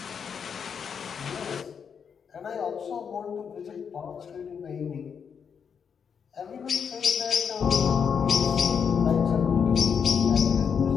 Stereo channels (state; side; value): quieter; right; 6.9 dB